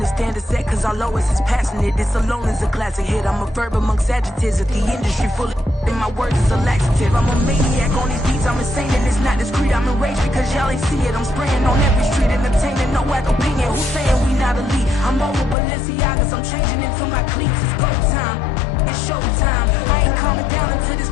standard set cause our lowest is passionate. This alone is a classic hit. I'm a verb amongst adjectives. If the industry full of and my words is a laxative. I'm a maniac on these beats. I'm insane and it's not discreet. I'm enraged because y'all ain't see it. I'm spraying on every street, entertaining, no whack opinion. Who's saying we not elite? I'm over Balenciagas. I'm changing into my cleats. It's go time. It's showtime. I ain't calming down until this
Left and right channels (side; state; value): right; drops out; at 15.6 s